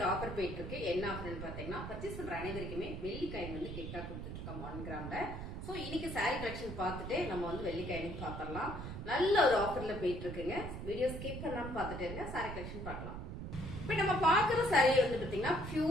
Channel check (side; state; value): right; noise; rumble, 7 dB below the sound